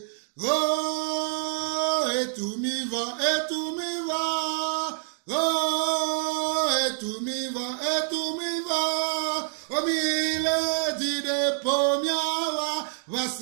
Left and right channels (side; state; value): left; silent; digital silence